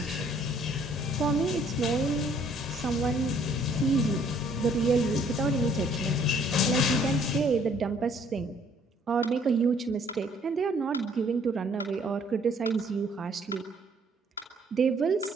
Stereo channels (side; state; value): both; normal; correlation 0.61